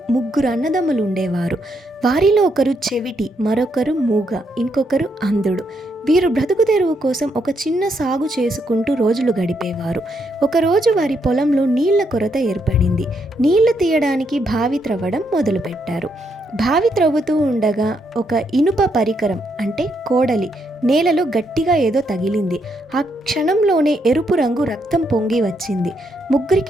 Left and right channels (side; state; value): both; normal; correlation 0.77